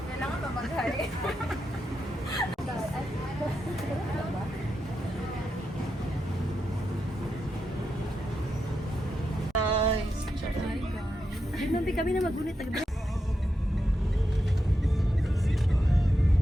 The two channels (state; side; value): normal; both; correlation 0.86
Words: ba mag-hi? Guys. Ay, mampi kami na magunit.